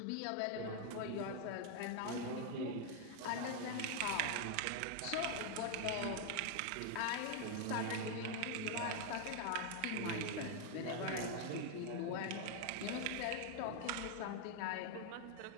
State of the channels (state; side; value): different; both; correlation 0.00